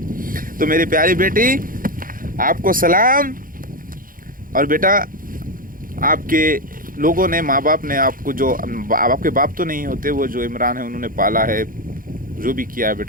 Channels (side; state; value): left; late; 0.40 ms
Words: तो मेरी प्यारी बेटी, आपको सलाम। और बेटा, आपके लोगों ने, माँ बाप ने आपको, जो आपके बाप तो नहीं होते, वो जो इमरान है उन्होंने पाला है, जो भी किया है